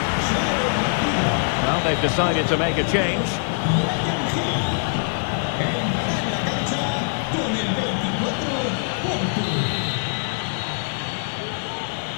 Well, they've decided to make a change.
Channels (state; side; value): silent; right; digital silence